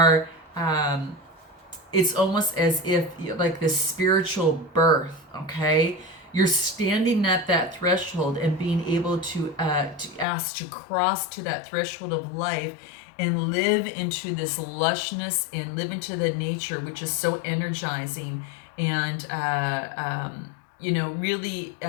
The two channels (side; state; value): right; drops out; at 10.2 s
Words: It's almost as if like this spiritual birth, okay? You're standing at that threshold and being able to ask to cross to that threshold of life and live into this lushness and live into the nature, which is so energizing, and really